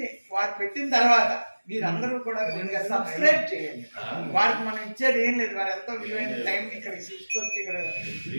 వారు పెట్టిన తర్వాత మీరందరూ కూడా సబ్స్క్రైబ్ చేయండి. వారికి మనం ఇచ్చేది ఏం లేదు, వారు ఎంతో విలువైన టైం ఇక్కడ తీసుకొచ్చి ఇక్కడ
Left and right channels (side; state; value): both; inverted; correlation -1.00